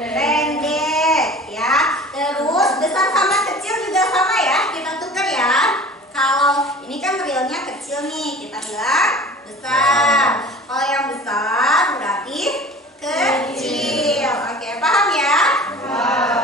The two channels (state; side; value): normal; both; correlation 0.42